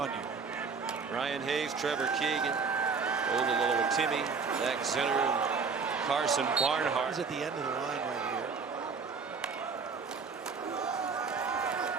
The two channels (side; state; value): left; quieter; 5.2 dB